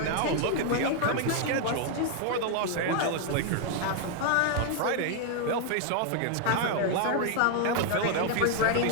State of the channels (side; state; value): both; different; correlation 0.00